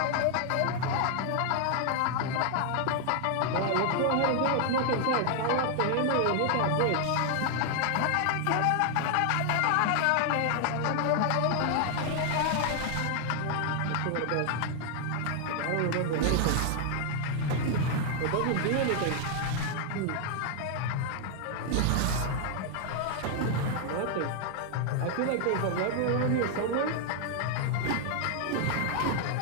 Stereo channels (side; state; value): both; different; correlation 0.00